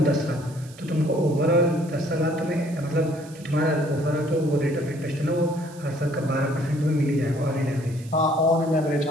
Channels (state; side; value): noise; right; hiss, 22 dB below the sound